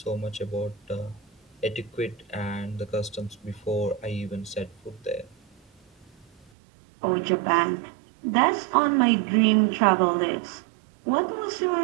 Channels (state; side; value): drops out; left; at 6.5 s